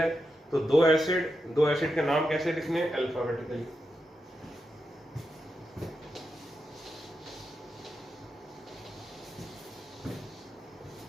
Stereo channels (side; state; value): both; normal; correlation 0.87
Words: तो 2 एसिड के नाम कैसे लिखने? अल्फाबेटिकली।